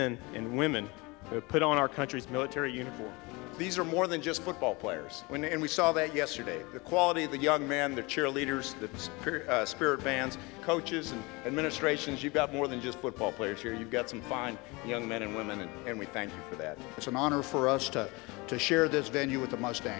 and women who have put on our country's military uniform. These are more than just football players, and we saw that yesterday. The quality of the young men, the cheerleaders, the spirit bands, coaches and administrations, you've got more than just football players here. You've got some fine young men and women, and we thank you for that. It's an honor for us to share this venue with the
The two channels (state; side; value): quieter; right; 25.4 dB